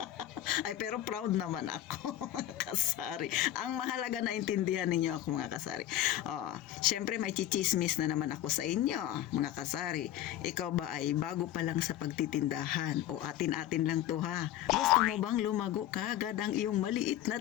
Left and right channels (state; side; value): quieter; right; 13.0 dB